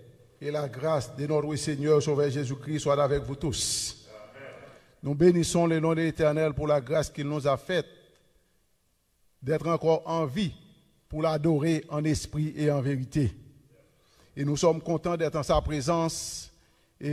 et la grâce de notre Seigneur Sauveur Jésus-Christ soient avec vous tous. Amen. Nous bénissons le nom de l'Éternel pour la grâce qu'il nous a faite d'être encore en vie pour l'adorer en esprit et en vérité. Et nous sommes contents d'être en sa présence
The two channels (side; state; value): both; identical; correlation 1.00